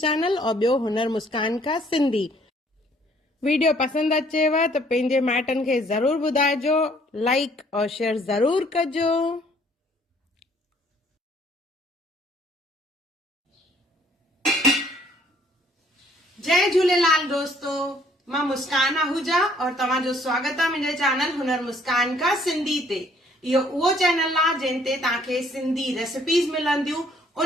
और ॿियो हुनर मुस्कान का सिंधी। वीडियो पसंदि अचेव त पंहिंजे माइटनि खे ज़रूर ॿुधाइजो, लाइक और शेयर ज़रूर कजो। जय झूलेलाल दोस्तों, मां मुस्कान आहूजा और तव्हांजो स्वागत आहे मुंहिंजे चैनल हुनर मुस्कान का सिंधी ते। इहो उहो चैनल आहे जिन ते तव्हांखे सिंधी रेसिपीज़ मिलंदियूं,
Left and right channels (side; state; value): both; normal; correlation 0.61